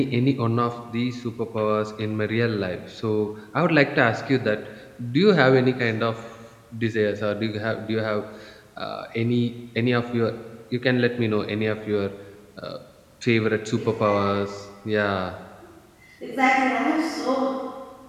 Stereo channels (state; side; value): identical; both; correlation 1.00